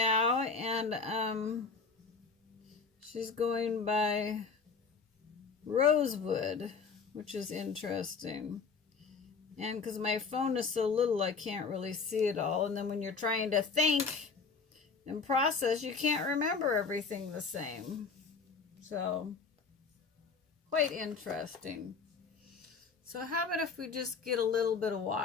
and she's going by Rosewood, which is interesting. And because my phone is so little, I can't really see it all. And then when you're trying to think and process, you can't remember everything the same. So, quite interesting. So how about if we just get a little bit of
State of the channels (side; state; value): right; quieter; 4.9 dB